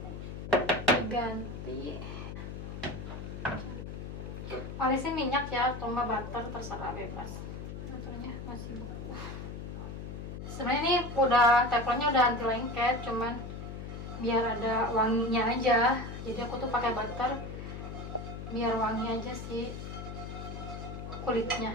Diganti. Olesin minyak ya, atau nggak butter, terserah bebas. Butternya masih beku. Sebenarnya ini udah teflonnya udah anti lengket, cuman biar ada wanginya aja. Jadi aku tuh pakai butter biar wangi aja sih kulitnya.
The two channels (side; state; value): left; noise; hum, 8 dB below the sound